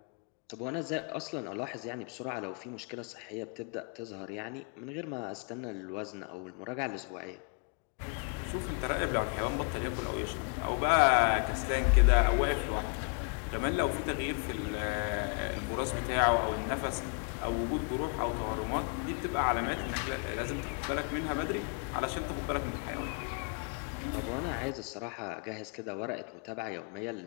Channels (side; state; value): right; quieter; 37.5 dB